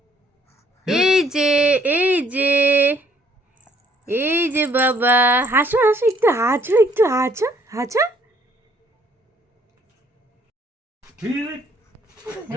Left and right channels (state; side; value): normal; both; correlation 0.64